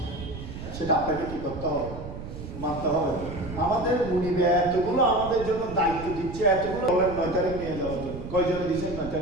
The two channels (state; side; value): noise; right; rumble, 10 dB below the sound